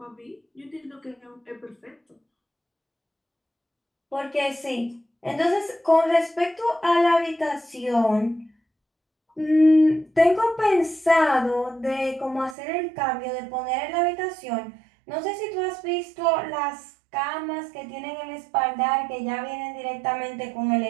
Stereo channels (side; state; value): left; drops out; at 12.6 s